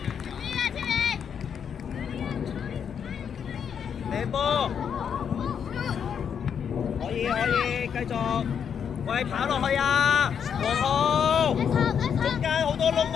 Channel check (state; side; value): quieter; right; 7.6 dB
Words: 波可以，繼續，喂，跑落去啊，黃浩，中間好多窿